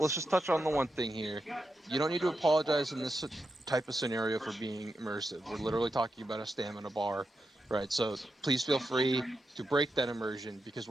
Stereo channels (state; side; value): normal; both; correlation 0.87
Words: just touch on the one thing here. You don't need to apologize in this type of scenario for being immersive. We're literally talking about a stamina bar, right? So please feel free to break that immersion, because